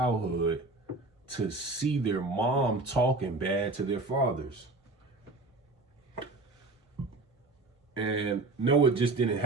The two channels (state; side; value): quieter; left; 3.3 dB